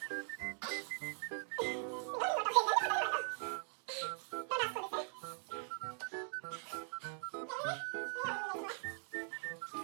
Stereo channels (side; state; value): left; silent; 50 dB below the other